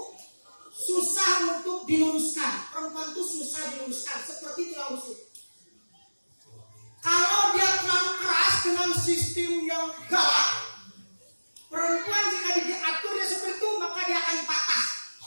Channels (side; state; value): both; inverted; correlation -1.00